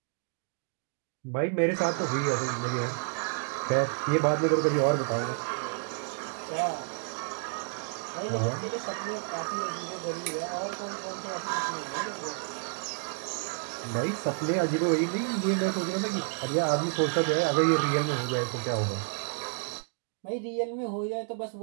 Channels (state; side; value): silent; left; 57 dB below the other